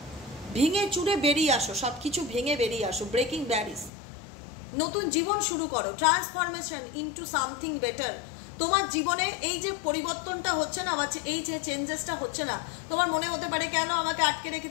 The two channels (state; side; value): drops out; right; at 3.9 s